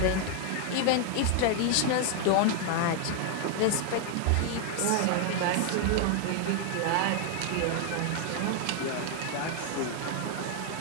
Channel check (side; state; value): both; different; correlation 0.00